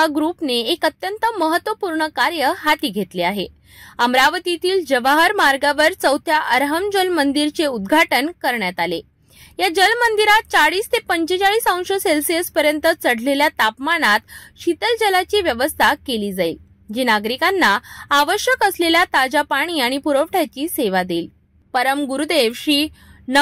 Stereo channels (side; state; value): both; identical; correlation 1.00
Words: ग्रुपने एक अत्यंत महत्त्वपूर्ण कार्य हाती घेतले आहे। अमरावतीतील जवाहर मार्गावर 4थ्या अरहम जल मंदिरचे उद्घाटन करण्यात आले। या जल मंदिरात 40 ते 45 अंश सेल्सिअस पर्यंत चढलेल्या तापमानात शीतल जलाची व्यवस्था केली जाईल, जी नागरिकांना आवश्यक असलेल्या ताजा पाणी आणि पुरवठ्याची सेवा देईल। परम गुरुदेव श्री